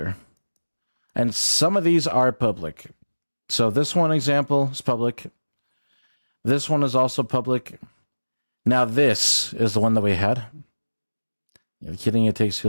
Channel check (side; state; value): both; inverted; correlation -1.00